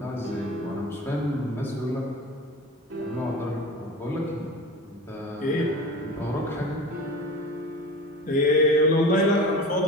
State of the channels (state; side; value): normal; both; correlation 0.34